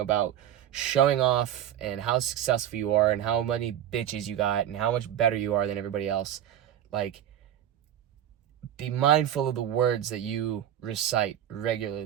about showing off and how successful you are and how many bitches you got and how much better you are than everybody else. Like, be mindful of the words that you recite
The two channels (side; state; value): left; quieter; 11.0 dB